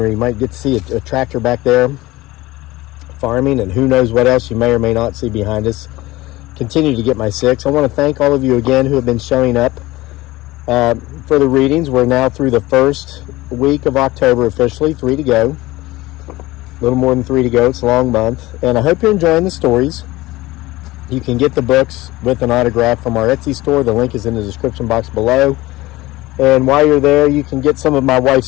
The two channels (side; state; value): right; quieter; 19.1 dB